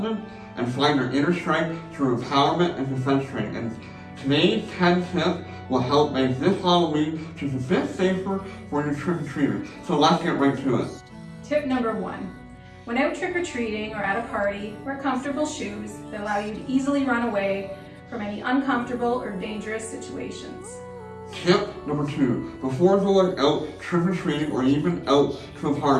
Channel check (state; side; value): identical; both; correlation 1.00